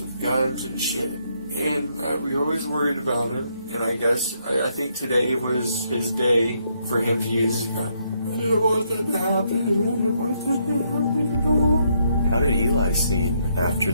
in guns and shit. And we always worried about him. And I think today was his day for him to use his gun. I didn't want that to happen. I didn't want that to happen at all. How did Eli seem after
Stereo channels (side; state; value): both; inverted; correlation -0.74